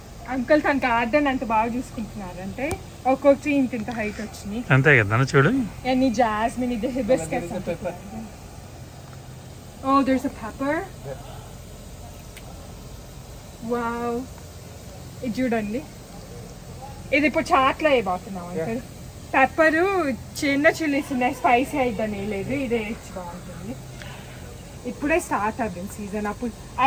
అంకుల్ తన గార్డెన్ అంత బాగా చూసుకుంటున్నారంటే ఒక్కొక్కటి ఇంత హైట్ వచ్చినాయి. అంతే కదా చూడు. ఎన్ని జాస్మిన్, ఇది hibiscus. Oh there's a pepper. Wow, ఇది చూడండి, ఇది ఇప్పుడు చాట్లో వేయబోతున్నాం అంకుల్. పెప్పరు చిన్న చిల్లీస్ ఉన్నాయి, స్పైసీ అయిద్దని లేదు, ఇదే వేసి బాగుంటుంది. ఇప్పుడే స్టార్ట్ అవుతుంది సీజన్. అప్పుడు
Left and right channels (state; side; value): identical; both; correlation 1.00